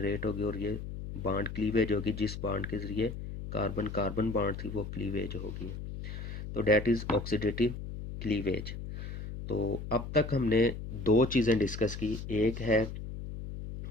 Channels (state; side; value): noise; left; hum, 8 dB below the sound